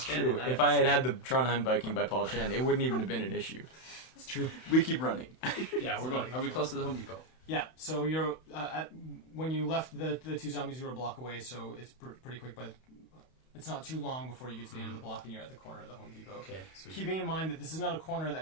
Paul true. Shannon. If I had had the Trondheim Viking by Paul Chan, it wouldn't even have been an issue. It's true. We keep running. Yeah, we're going. Are we close to the Home Depot? Yeah. So you're when you left the two zombies, you were a block away. So it's pretty quick, but it's not too long before you get to the end of the block and you're at the corner of the Home Depot. Okay, sweet. Keeping in mind that this is not a corner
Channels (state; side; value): late; right; 31 ms